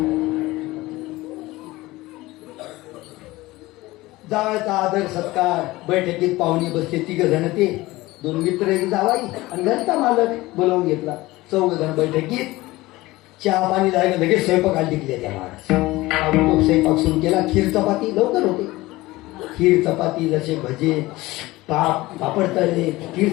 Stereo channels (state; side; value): quieter; right; 19.3 dB